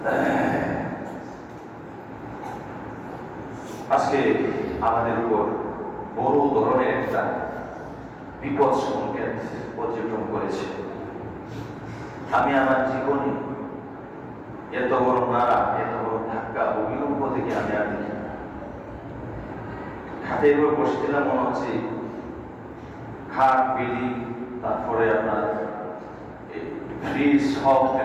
আজকে আমাদের উপর বড় ধরনের একটা বিপদ সংকেত পর্যটন করেছে। আমি আমার জীবনে এত বড় নাড়া, এত বড় ধাক্কা, ভূমিকম্প থেকে আমি আর দেখি। খাটের উপর বসেছিলাম, মনে হচ্ছে খাট, বিল্ডিং, তারপরে আপনার ফ্রিজ সব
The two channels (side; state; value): both; identical; correlation 1.00